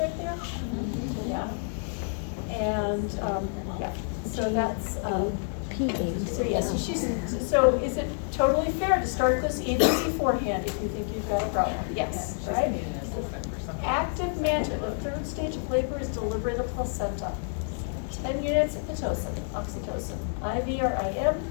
there? Yeah. And, yeah, so that's, so yeah, so is it totally fair to start this even beforehand if you think you've got a problem? Yes, right? Active management, the third stage of labor is delivery of the placenta. 10 units of Pitocin, oxytocin, IV or IM,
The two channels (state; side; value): silent; right; 59 dB below the other